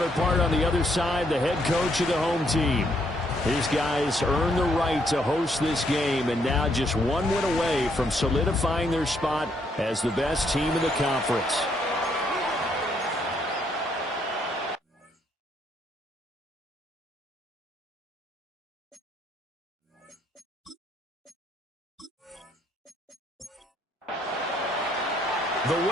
on the other side, the head coach of the home team. His guys earned the right to host this game and now just one win away from solidifying their spot as the best team in the conference. The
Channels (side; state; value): both; normal; correlation 0.72